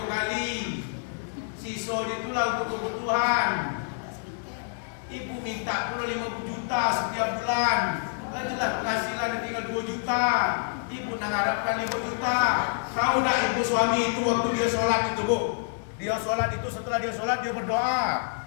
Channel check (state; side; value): silent; right; digital silence